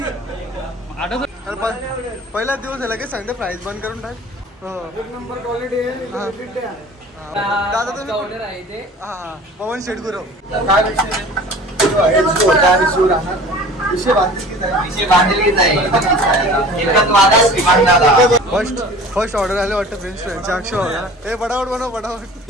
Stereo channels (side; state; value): both; normal; correlation 0.43